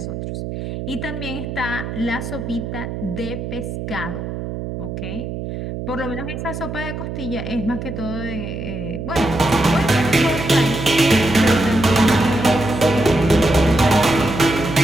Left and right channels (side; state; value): right; noise; hum, 6 dB below the sound